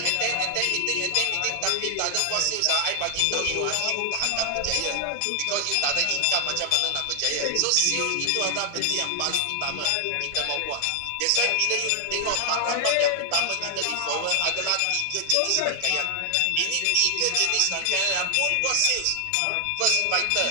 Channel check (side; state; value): both; different; correlation 0.00